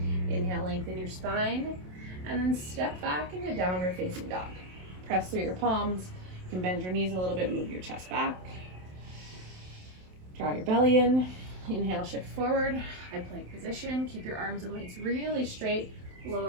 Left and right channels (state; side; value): late; left; 27 ms